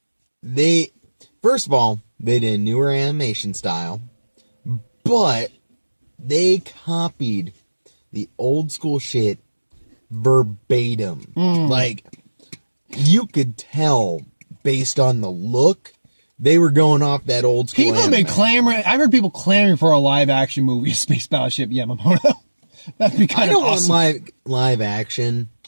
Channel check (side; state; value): both; inverted; correlation -1.00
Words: first of all, they did a newer animation style, but they copied the old school shit verbatim. Like, you could tell based on the look, they were going off that old school People have been anime. clamoring. I've heard people clamoring for a live action movie of Space Battleship Yamamoto. That'd be I kind of don't awesome. want live action